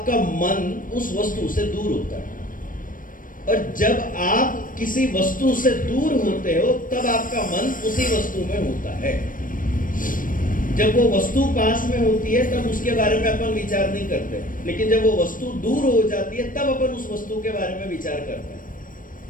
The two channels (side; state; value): right; late; 0.40 ms